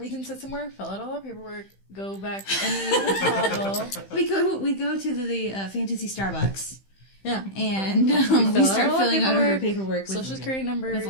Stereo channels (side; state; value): right; late; 15 ms